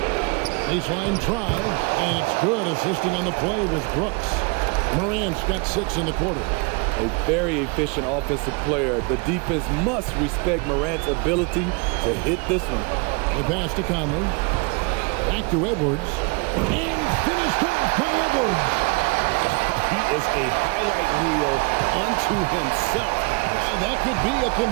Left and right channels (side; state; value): left; quieter; 30.9 dB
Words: Baseline try, and it's good. Assisting on the play was Brooks. Morant's got 6 in the quarter. A very efficient offensive player. The defense must respect Morant's ability to hit this one. The pass to Conley. Back to Edwards. And finished off by Edwards. He is a highlight reel unto himself, guys. That could be a